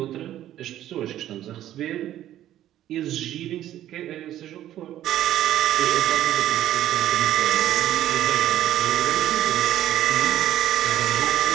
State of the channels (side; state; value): left; quieter; 12.6 dB